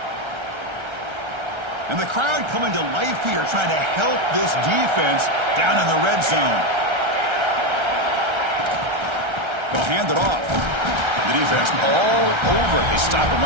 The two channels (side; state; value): left; late; 1.3 ms